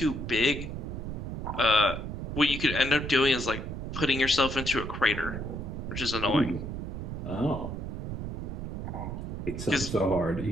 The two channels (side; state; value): right; noise; rumble, 5 dB below the sound